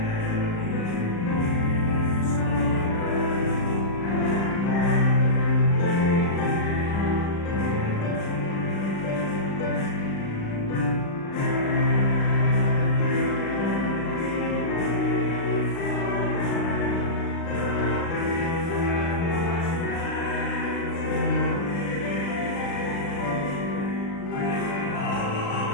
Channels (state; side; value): late; right; 35 ms